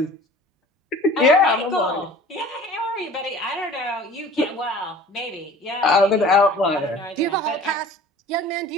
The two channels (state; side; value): normal; both; correlation 0.45